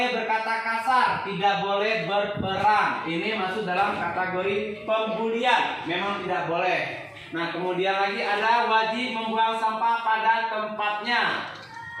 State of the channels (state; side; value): identical; both; correlation 1.00